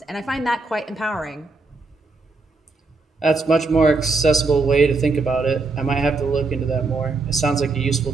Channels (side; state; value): left; quieter; 3.7 dB